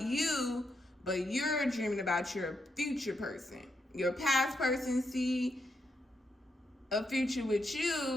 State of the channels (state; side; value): normal; both; correlation 0.81